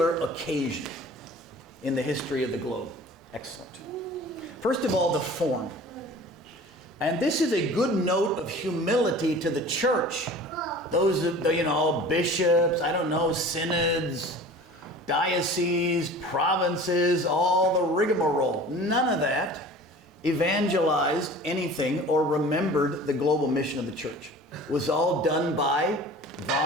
occasion in the history of the globe. Excellent. First of all, the form. And this is a good note of humility to the church. Those, bishops, synods, dioceses, provinces, all the rigmarole. None of that evangelized anything or remembered the global mission of the church. It was all done by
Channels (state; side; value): normal; both; correlation 0.42